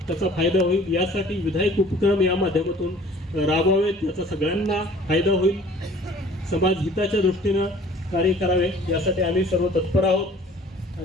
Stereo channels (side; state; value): both; normal; correlation 0.51